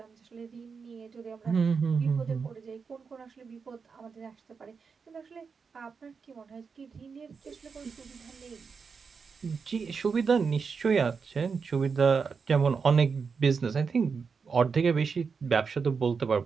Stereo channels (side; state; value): left; quieter; 5.5 dB